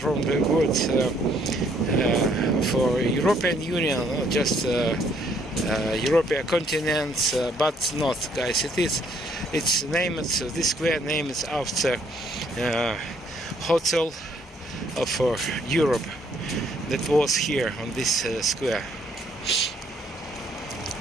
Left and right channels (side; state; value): both; normal; correlation 0.66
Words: the word for European Union, or just European continent, but not, guys. It's named, this square name is after hotel of Europe that was here on this square.